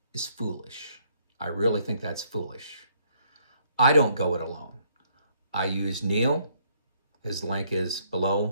is foolish. I really think that's foolish. I don't go it alone. I use Neil. His link is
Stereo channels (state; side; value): inverted; both; correlation -0.67